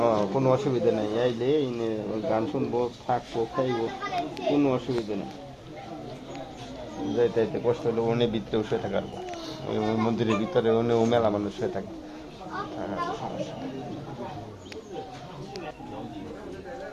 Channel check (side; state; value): both; identical; correlation 1.00